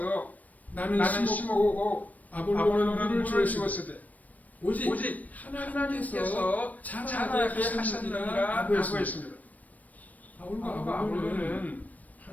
나는 심었고 아볼로는 물을 주었으되 오직 하나님께서 자라게 하셨느니라고 했습니다. 바울과 아볼로는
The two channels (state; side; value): late; right; 0.075 ms